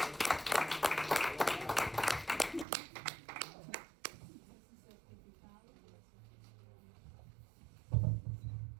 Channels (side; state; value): left; drops out; at 2.7 s